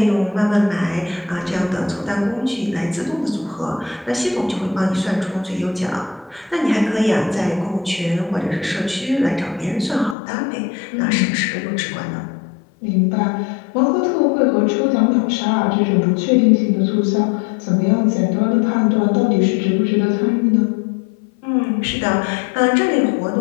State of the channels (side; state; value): right; drops out; at 10.2 s